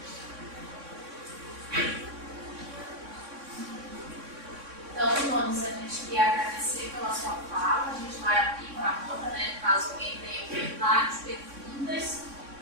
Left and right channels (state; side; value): late; left; 3.6 ms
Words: Então, Nunes, a gente queria agradecer pela sua fala. A gente vai abrir para a roda, né? Caso alguém tenha comentários, perguntas.